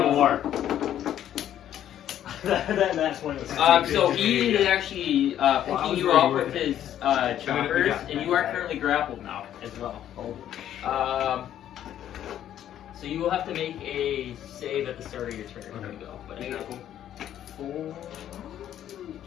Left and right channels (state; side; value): quieter; right; 11.0 dB